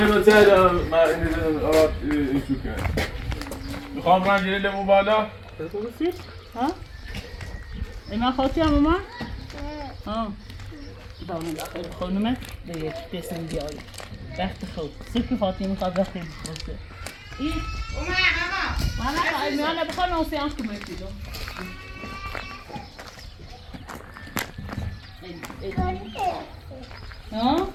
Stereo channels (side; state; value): both; identical; correlation 1.00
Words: من این چو کنم میخوام من گیره لیمو بالا ها؟ اینا خواهی هم اومد؟ ها دامن داخل خانومه به یک دستن بیاری وقت خود سرکی خاطی میخواد وقتی بخواسته این اومد میانه بخواه نوسیانس که میتیدم ها؟